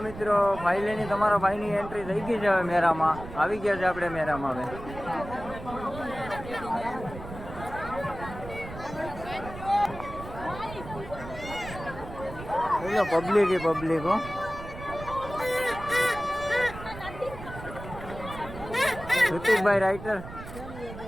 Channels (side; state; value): right; noise; rumble, 12 dB below the sound